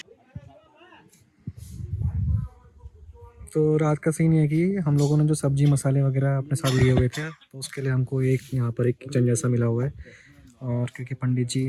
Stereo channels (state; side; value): identical; both; correlation 1.00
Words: तो रात का सीन ये है कि हम लोगों ने जो सब्जी मसाले वगैरह अपने साथ लिए हुए थे, तो उसके लिए हमको यहाँ पर एक किचन जैसा मिला हुआ है। और क्योंकि पंडित जी